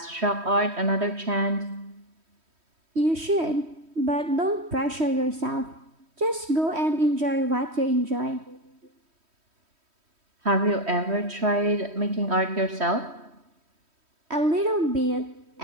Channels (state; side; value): late; left; 3.1 ms